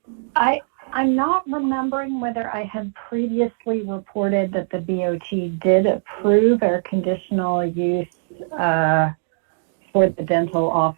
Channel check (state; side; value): silent; left; digital silence